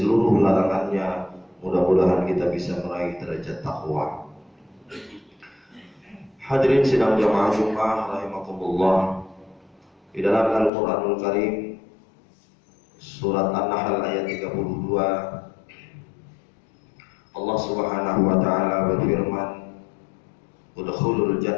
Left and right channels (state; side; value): drops out; right; at 10.7 s